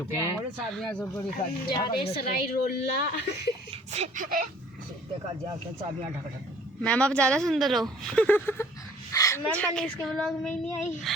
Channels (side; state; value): both; normal; correlation 0.54